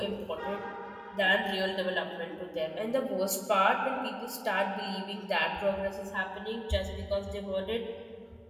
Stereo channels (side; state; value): both; identical; correlation 1.00